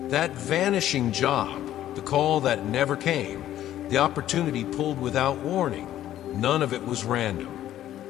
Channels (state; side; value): quieter; right; 12.5 dB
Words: That vanishing job, the call that never came, the opportunity pulled without warning, none of it was random.